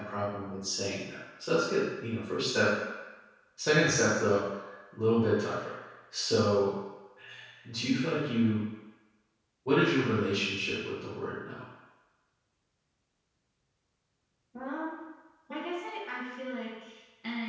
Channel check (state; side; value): identical; both; correlation 1.00